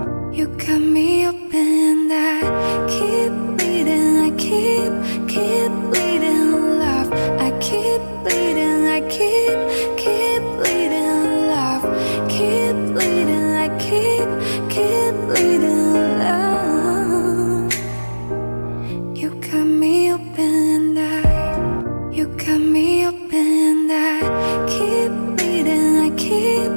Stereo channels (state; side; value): inverted; both; correlation -1.00